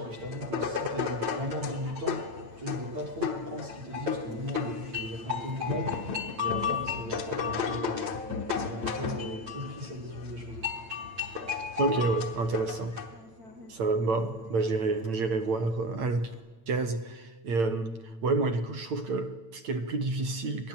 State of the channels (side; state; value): left; late; 8.9 ms